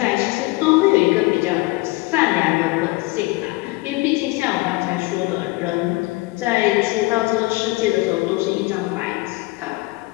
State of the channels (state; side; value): quieter; right; 22.4 dB